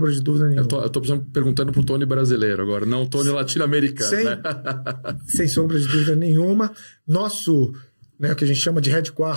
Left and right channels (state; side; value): inverted; both; correlation -1.00